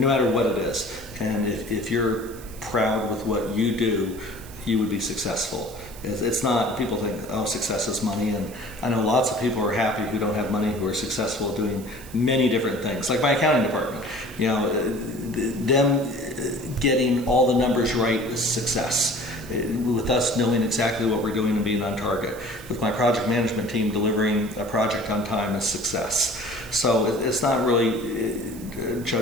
no matter what it is. And if you're proud with what you do, you would be successful. It's not, people think, oh, success is money, and I know lots of people are happy who don't have money, who are successful doing many different things. Like my accounting department, you know, them getting all the numbers right is success. With us knowing exactly what we're doing and being on target. With my project management team delivering a project on time is success. So it's not really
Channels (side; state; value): right; noise; hiss, 19 dB below the sound